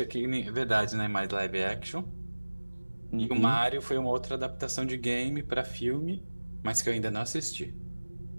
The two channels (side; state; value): both; inverted; correlation -1.00